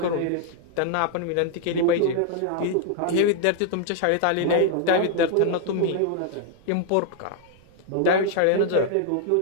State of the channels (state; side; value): different; both; correlation 0.00